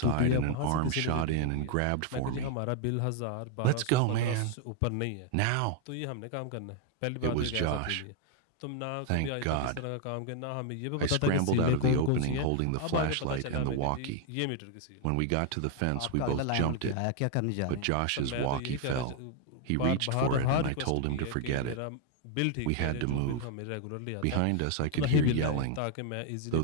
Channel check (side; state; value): both; different; correlation 0.00